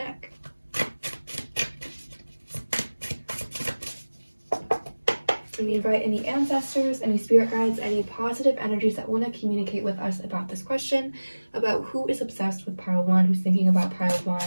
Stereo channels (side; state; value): both; inverted; correlation -1.00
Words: And we invite any ancestors, any spirit guides, any positive energies that want to communicate with us about this question, about who is obsessed with pile 1, who's thinking about pile 1,